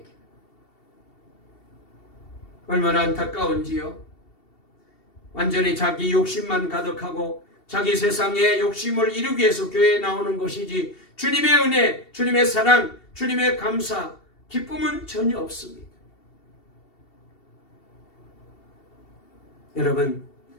얼마나 안타까운지요. 완전히 자기 욕심만 가득하고 자기 세상의 욕심을 이루기 위해서 교회에 나오는 것이지 주님의 은혜, 주님의 사랑, 주님의 감사, 기쁨은 전혀 없습니다. 여러분,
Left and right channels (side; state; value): right; late; 2.7 ms